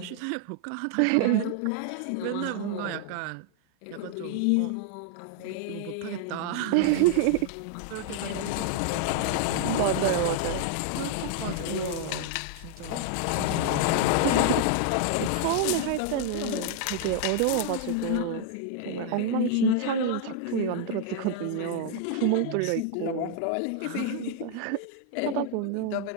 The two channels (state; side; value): different; both; correlation -0.01